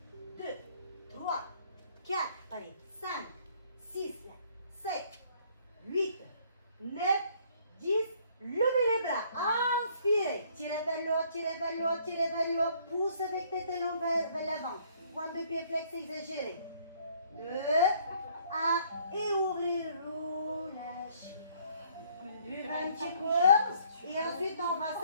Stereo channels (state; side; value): inverted; both; correlation -0.62